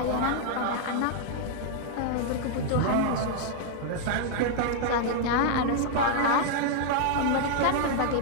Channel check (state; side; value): different; both; correlation 0.00